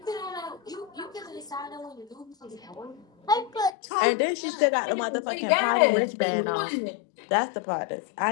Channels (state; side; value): drops out; right; at 3.8 s